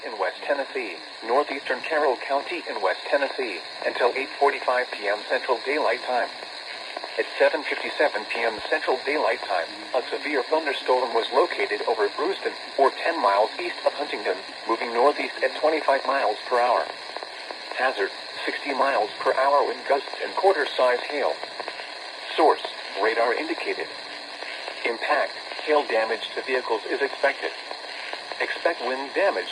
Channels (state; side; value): identical; both; correlation 1.00